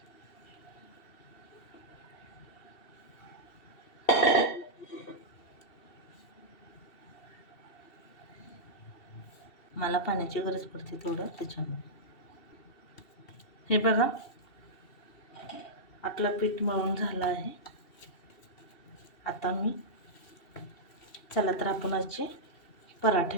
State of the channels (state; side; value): late; right; 2.7 ms